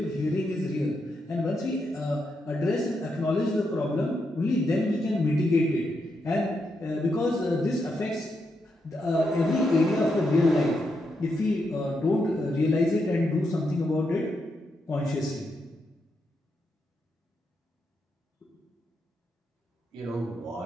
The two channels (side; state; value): both; normal; correlation 0.82